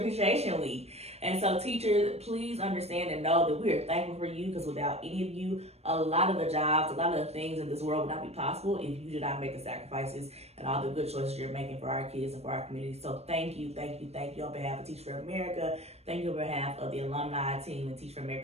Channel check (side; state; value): left; late; 0.31 ms